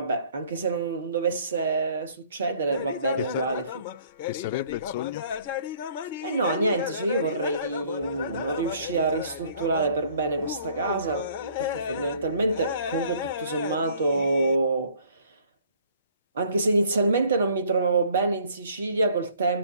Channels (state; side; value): inverted; both; correlation -0.57